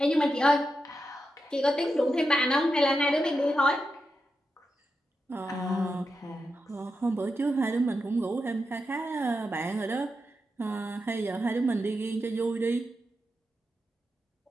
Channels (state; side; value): normal; both; correlation 0.88